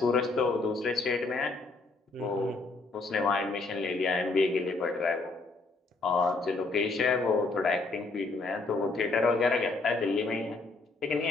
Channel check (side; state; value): right; quieter; 3.5 dB